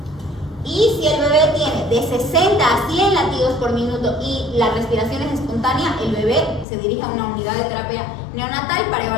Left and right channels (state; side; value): drops out; right; at 6.7 s